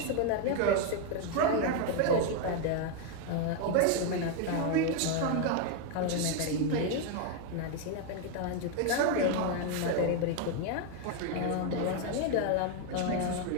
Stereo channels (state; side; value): different; both; correlation 0.01